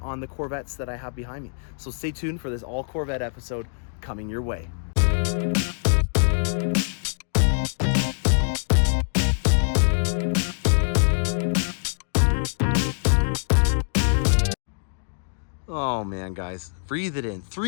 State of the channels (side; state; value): right; silent; digital silence